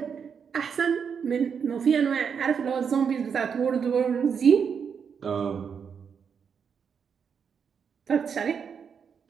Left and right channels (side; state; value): left; quieter; 6.8 dB